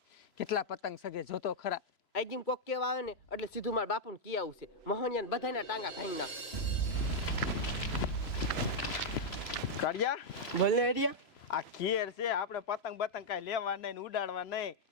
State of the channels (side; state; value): right; late; 3.0 ms